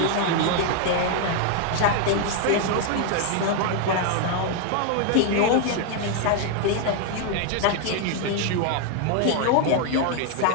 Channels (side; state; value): both; different; correlation 0.00